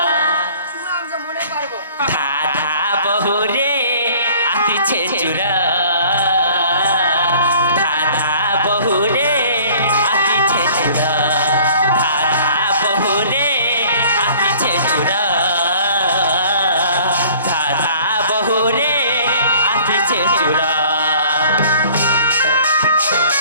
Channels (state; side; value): inverted; both; correlation -0.51